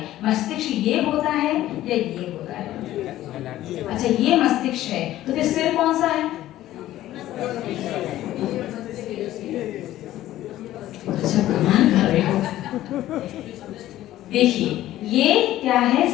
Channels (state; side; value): quieter; right; 14.2 dB